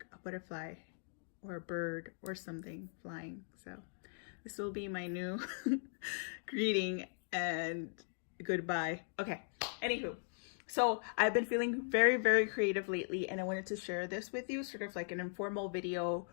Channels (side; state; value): right; silent; digital silence